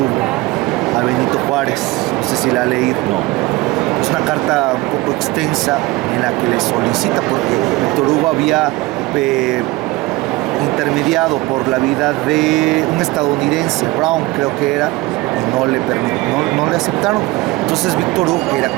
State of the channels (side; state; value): left; quieter; 21.0 dB